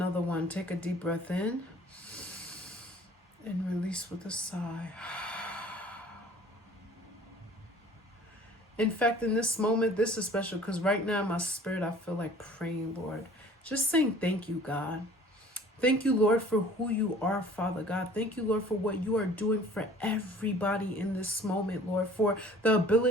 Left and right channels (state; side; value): normal; both; correlation 0.49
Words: one. Take a deep breath in and release with a sigh. In fact, in this moment, this is special because right now in my spirit, I feel like praying, Lord. Just saying thank you, God. Thank you, Lord, for who you are, Father God. Thank you, Lord, for what you are doing for everybody in this moment, Lord, for the